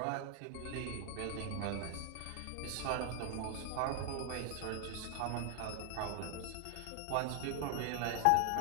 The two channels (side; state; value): both; different; correlation 0.00